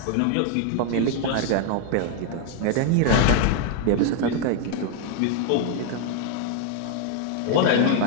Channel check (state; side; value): different; both; correlation 0.00